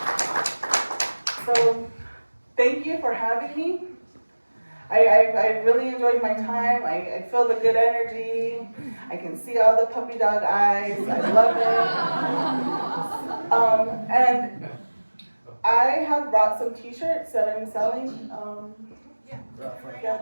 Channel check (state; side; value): inverted; both; correlation -1.00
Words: So, thank you for having me. I really enjoyed my time. I feel the good energy. I can see all the puppy dog eyes. I love it. And I have brought some t-shirts that I'm selling. Yeah,